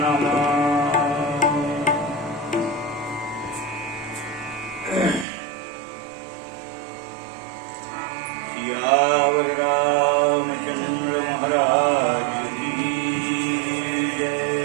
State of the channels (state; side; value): drops out; left; at 5.2 s